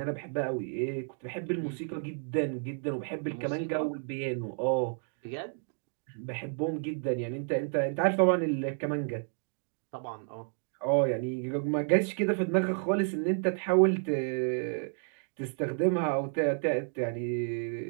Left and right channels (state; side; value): silent; left; 57 dB below the other